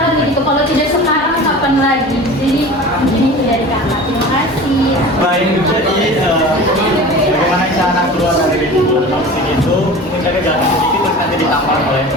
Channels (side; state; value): both; normal; correlation 0.37